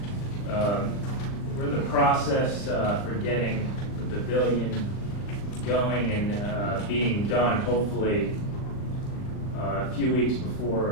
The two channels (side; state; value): right; late; 39 ms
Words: We're in the process for getting the pavilion going and being done, hopefully, a few weeks before